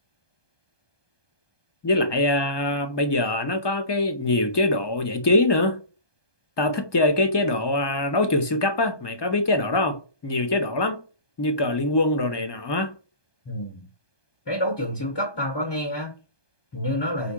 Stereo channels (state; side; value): late; right; 1.2 ms